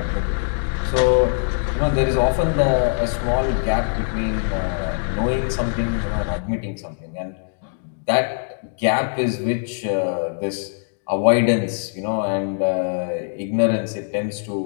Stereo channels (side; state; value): right; silent; digital silence